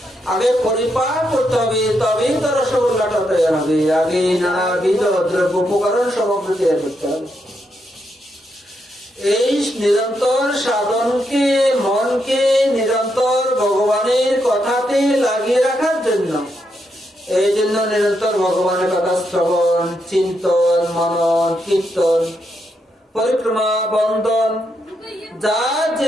আগে পরিপাক করতে হবে, তবেই তো রসগোল্লাটা তৈরি হবে। আগে নানাবিধ দ্রব্য উপকরণ সামগ্রী তৈরি করতে হবে। এই নিরন্তর সাধনকে, মনকে নিরন্তর ভগবানের কথাতে লাগিয়ে রাখার জন্য, এই জন্য নিরন্তর ভগবানের কথা শ্রবণ, চিন্তন, মনন, কীর্তন, পরিক্রমা, বন্দন, যার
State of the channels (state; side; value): normal; both; correlation 0.81